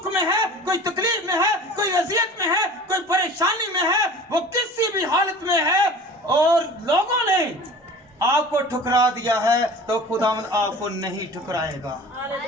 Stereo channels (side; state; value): both; normal; correlation 0.40